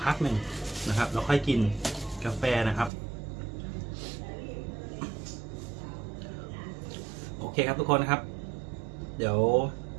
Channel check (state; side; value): drops out; left; at 2.9 s